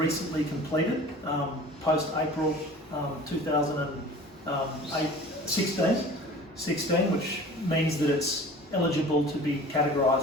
completed, post-April 2016, which means that it's eligible to be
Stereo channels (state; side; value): normal; both; correlation 0.42